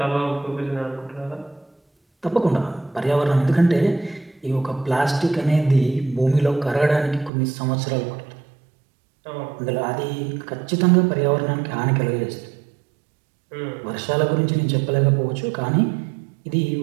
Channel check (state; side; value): drops out; left; at 7.3 s